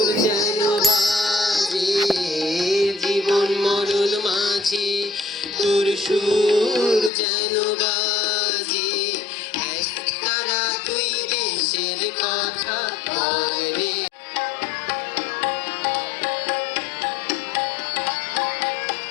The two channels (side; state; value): right; drops out; at 7.1 s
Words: যেন বাজে, জীবন মরণ মাঝে তোর সুর যেন বাজে। একতারা তুই দেশের কথা বলে